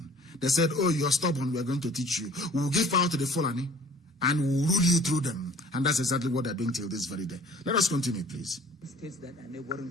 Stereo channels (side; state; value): both; normal; correlation 0.50